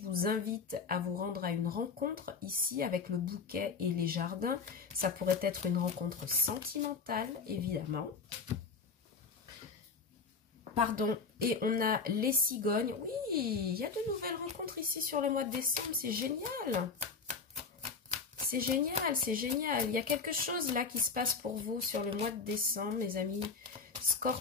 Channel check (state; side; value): quieter; right; 5.0 dB